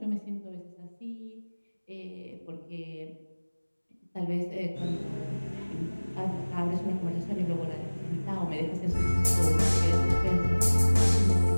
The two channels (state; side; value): inverted; both; correlation -1.00